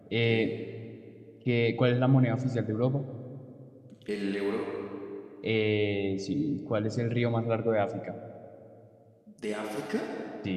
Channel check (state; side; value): identical; both; correlation 1.00